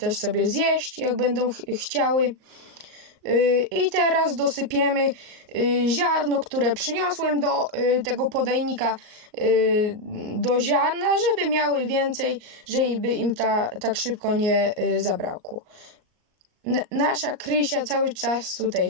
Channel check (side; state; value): left; late; 38 ms